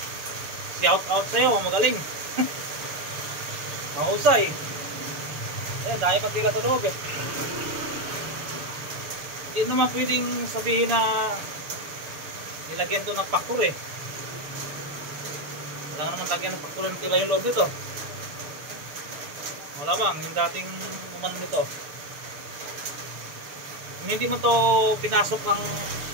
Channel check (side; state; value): left; late; 6.8 ms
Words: Shout out sa'yo, magaling. Mahusay. Ayan, dahil pang tela sa loob eh. Hindi naman pwedeng sabihin na nilagyan to ng factor eh. Wala naman lagyan ng factor ng tela yung loob nito. Wala bang, yung dating umano nito. Kung hindi mo to pinasok ng